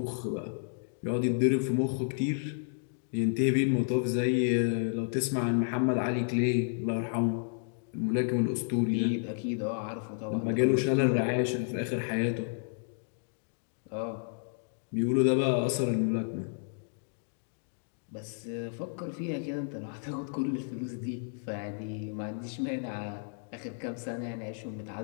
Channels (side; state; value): right; silent; digital silence